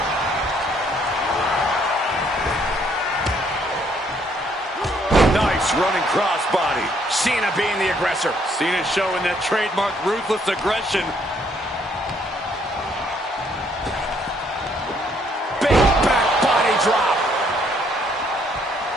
Nice running crossbody. Cena being the aggressor. Cena showing that trademark ruthless aggression. Big back body drop.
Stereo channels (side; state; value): both; normal; correlation 0.67